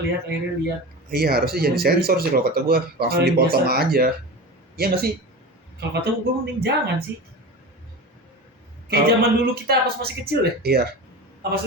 Iya harusnya jadi sensor sih kalau kata gue, langsung Paling dipotong biasa. aja. Iya nggak sih? Kalau kata gue mending jangan sih. Kayak Kalau- zaman dulu kita pas masih kecil deh. Iya.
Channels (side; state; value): both; normal; correlation 0.29